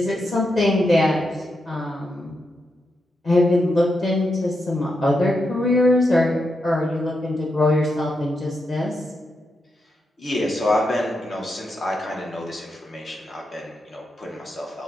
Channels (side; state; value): both; normal; correlation 0.85